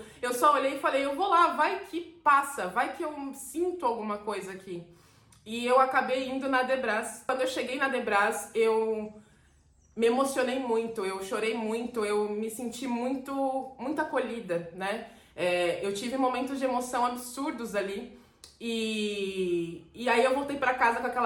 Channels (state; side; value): identical; both; correlation 1.00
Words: Eu só olhei e falei, eu vou lá, vai que passa, vai que eu sinto alguma coisa aqui. E eu acabei indo na Debras. Quando eu cheguei na Debras, eu me emocionei muito, eu chorei muito, eu me senti muito acolhida, né? Eu tive momentos de emoção absurdos ali. E aí eu voltei pra casa com